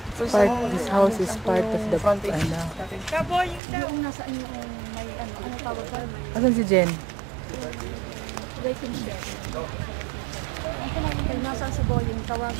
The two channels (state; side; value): drops out; left; at 3.6 s